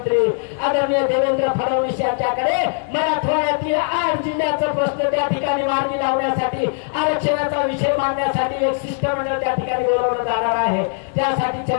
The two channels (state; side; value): silent; right; digital silence